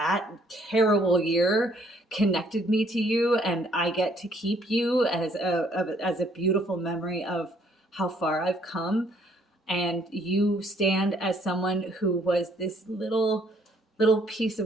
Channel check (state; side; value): normal; both; correlation 0.65